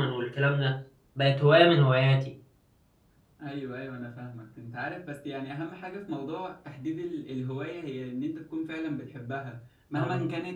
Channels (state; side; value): identical; both; correlation 1.00